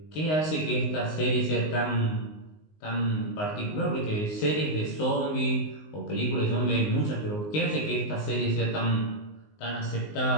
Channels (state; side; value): late; right; 19 ms